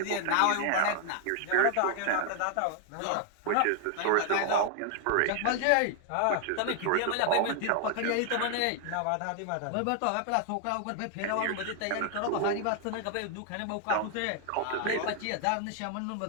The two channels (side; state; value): both; different; correlation 0.00